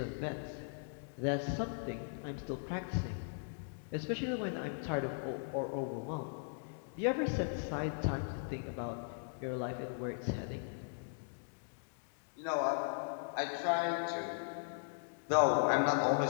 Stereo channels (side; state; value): right; silent; digital silence